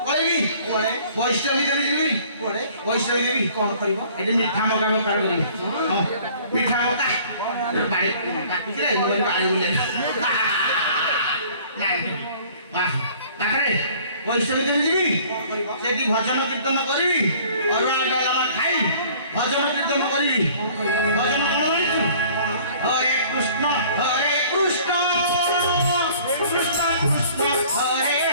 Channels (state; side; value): inverted; both; correlation -0.52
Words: ପଳେଇବି ବୈଷ୍ଣବୀ ଦେବୀ ଯିବି ବୈଷ୍ଣବୀ ଦେବୀ କଣ କରିବ ଏଠି ମିଠା ମକା ବେପାର କରିବି ହଁ ମିଠା ମକା ବାড়ি କାଟିଥିଲେ ମୁଁ କହିଲି ବାড়ି ବୁଲେ ନାଇଁ ପାଖରେ ବୈଷ୍ଣବୀ ଦେବୀ ଯିବି ସେଠି ଭଜନ କୀର୍ତ୍ତନ କରିବି ଅରୁଆ ଡାଲମା ଖାଇ ଭଜନ କୀର୍ତ୍ତନ କରିବି ଭଜନ କଣ ଜାଣିଛୁ ହରେ କୃଷ୍ଣ କୃଷ୍ଣ କୃଷ୍ଣ ହରେ